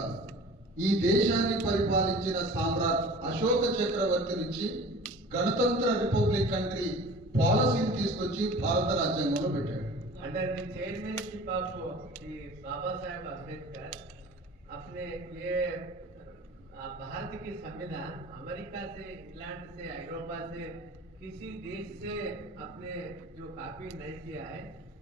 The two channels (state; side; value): normal; both; correlation 0.43